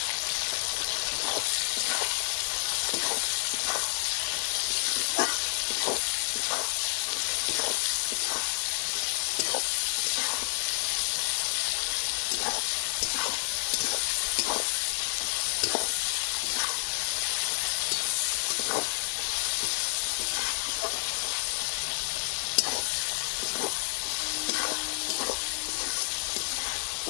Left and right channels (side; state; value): right; silent; 58 dB below the other